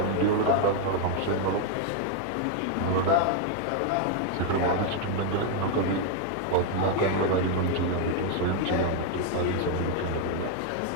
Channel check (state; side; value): different; both; correlation 0.01